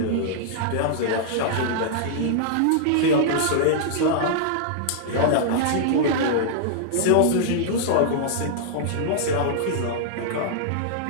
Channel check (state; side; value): different; both; correlation -0.02